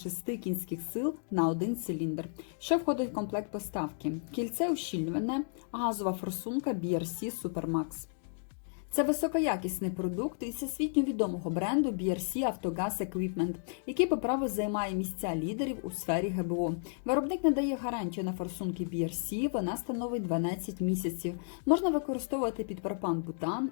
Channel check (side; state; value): right; silent; digital silence